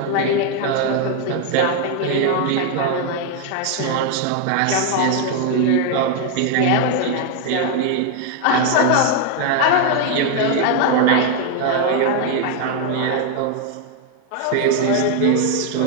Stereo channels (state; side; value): different; both; correlation 0.01